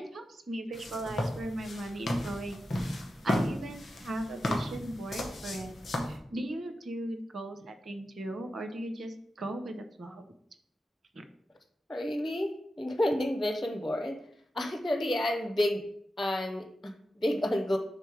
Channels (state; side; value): normal; both; correlation 0.91